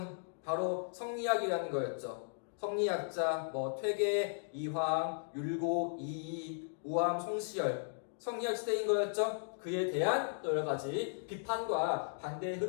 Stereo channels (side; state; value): right; silent; digital silence